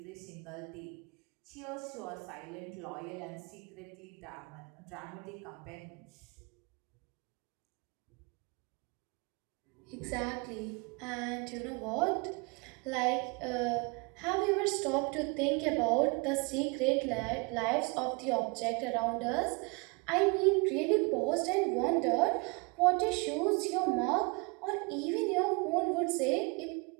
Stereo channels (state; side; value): quieter; left; 30.5 dB